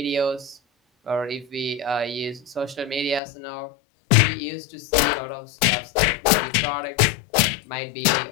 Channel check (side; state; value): right; drops out; at 3.2 s